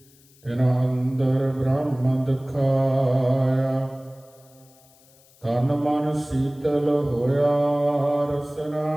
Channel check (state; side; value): noise; left; hiss, 29 dB below the sound